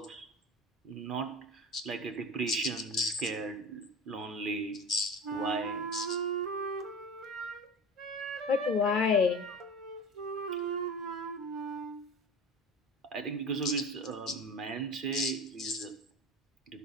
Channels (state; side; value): normal; both; correlation 0.32